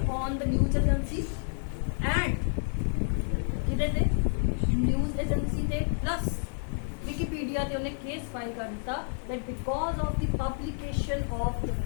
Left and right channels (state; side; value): silent; right; 58 dB below the other